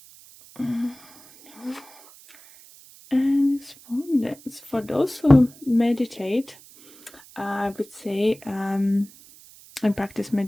and respondents. For those who meditate, I would say, and practice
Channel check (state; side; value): noise; right; hiss, 23 dB below the sound